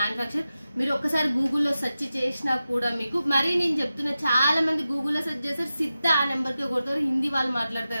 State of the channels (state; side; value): inverted; both; correlation -0.93